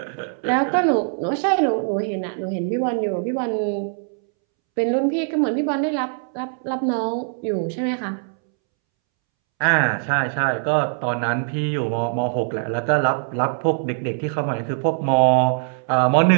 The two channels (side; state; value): left; silent; 64 dB below the other